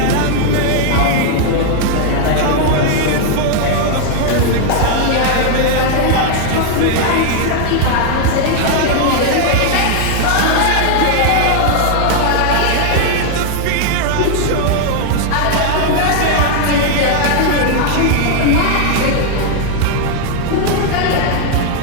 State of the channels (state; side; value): different; both; correlation 0.00